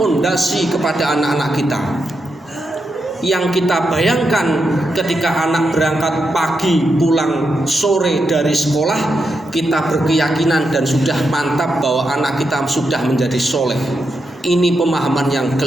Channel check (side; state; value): both; normal; correlation 0.85